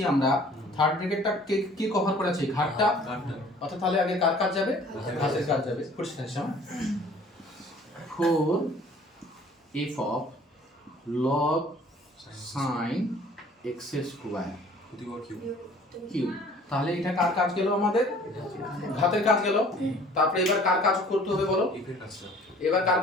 আমরা, থার্ড ব্র্যাকেটটা কি কভার করেছে? ঘাতটা। অর্থাৎ তাহলে আগে কার কাজ যাবে? ঘাতের কাজ যাবে। করছি না 4 f of log sin x square cube. তাহলে এটা কার কাজ গেল? আমাদের ঘাতের কাজ গেল। তারপরে এবার কার কাজ করতে হবে বলো? এবার কার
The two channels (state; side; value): normal; both; correlation 0.52